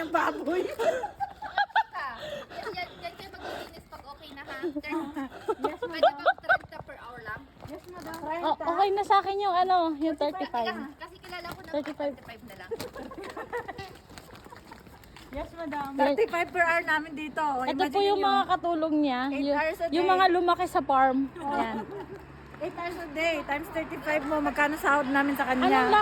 baboy. Yan kayo mag-finish pag okay na ha? Pwede bang 30 per hour lang? Yes, madam. Oh, okay na sa akin yung ano, yung 35. Kasi kilala ko na 35. 35 na lang. Yes, madam. 35 per hour namin dito. Ito po yung mga katulong niya, 8 hours a yung day. mga lumaki sa farm. Ayan. 8 hours a day, times 35 mo, magkano sahod namin sa Anong kanya?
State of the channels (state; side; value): identical; both; correlation 1.00